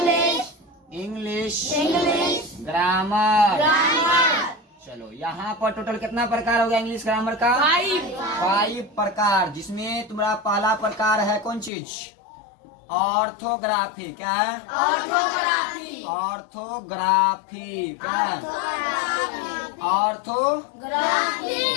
grammar. चलो यहाँ पर टोटल कितना प्रकार हो गया इंग्लिश ग्रामर का? 5 प्रकार, जिसमें तुम्हारा पहला प्रकार है कौन चीज? ऑर्थोग्राफी। क्या है? ऑर्थोग्राफी। क्या है? ऑर्थोग्राफी।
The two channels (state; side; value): drops out; right; at 11.7 s